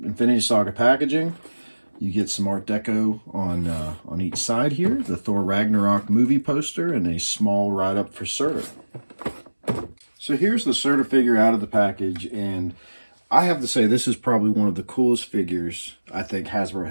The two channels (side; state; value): both; inverted; correlation -1.00